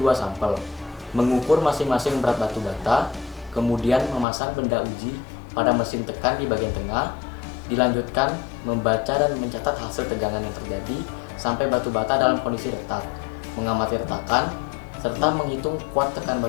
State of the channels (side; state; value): right; drops out; at 4.2 s